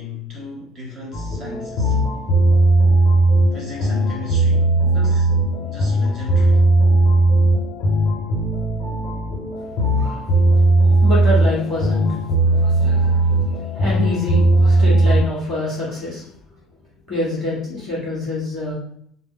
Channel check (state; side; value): normal; both; correlation 0.63